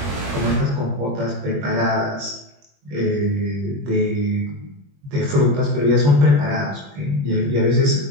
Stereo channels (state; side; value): late; left; 21 ms